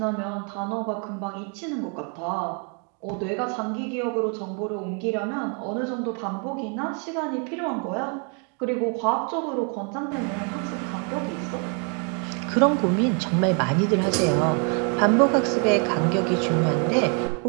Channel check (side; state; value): left; quieter; 38.0 dB